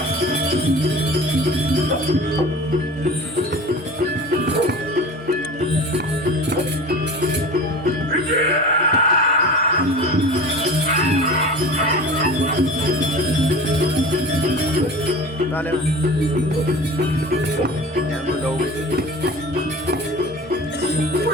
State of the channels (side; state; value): both; normal; correlation 0.37